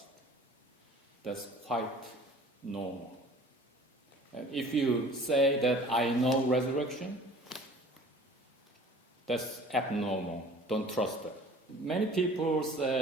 That's quite normal. And if you say that I know resurrection, that's abnormal. Don't trust that. Many people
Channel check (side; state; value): both; normal; correlation 0.47